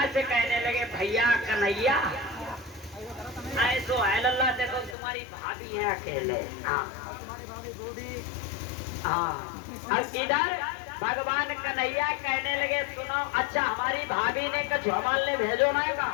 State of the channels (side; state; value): right; drops out; at 5.0 s